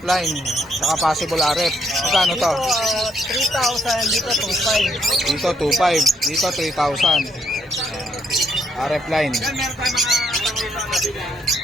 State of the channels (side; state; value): both; normal; correlation 0.73